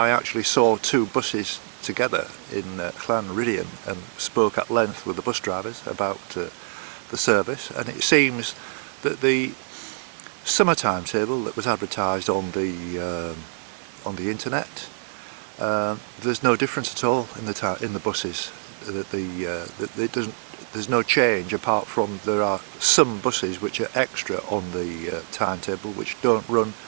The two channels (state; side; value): silent; left; digital silence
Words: actually saw two buses together in Llanmadoc and spoke at length with the bus drivers about the service, and it seems that the summer timetable that was advertised on the internet, there's no difference at all in the buses. There's no change, apart from there are some buses which are extra on the timetable which don't run